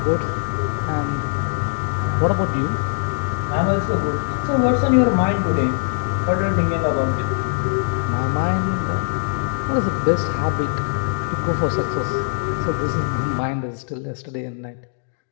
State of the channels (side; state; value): right; silent; digital silence